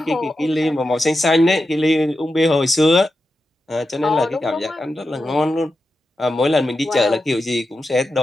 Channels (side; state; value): both; normal; correlation 0.90